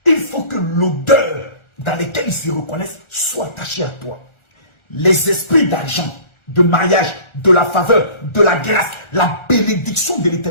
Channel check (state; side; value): late; right; 1.4 ms